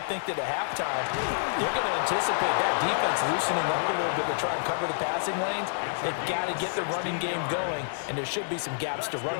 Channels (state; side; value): silent; right; 58 dB below the other